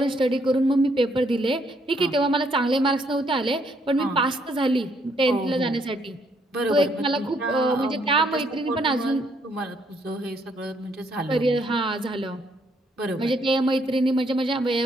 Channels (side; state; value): both; normal; correlation 0.71